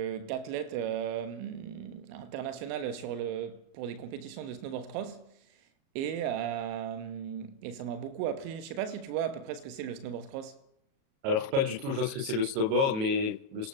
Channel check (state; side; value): late; left; 37 ms